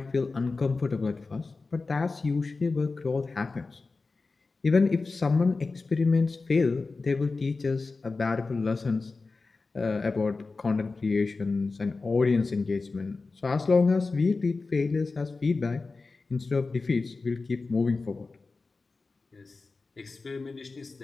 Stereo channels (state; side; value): quieter; right; 3.9 dB